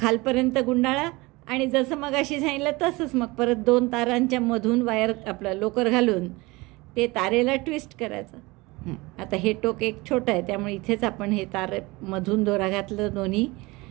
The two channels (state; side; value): quieter; left; 23.0 dB